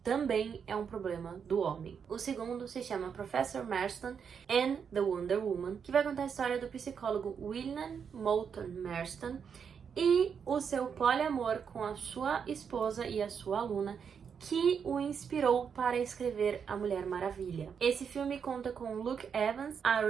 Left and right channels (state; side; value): quieter; left; 6.9 dB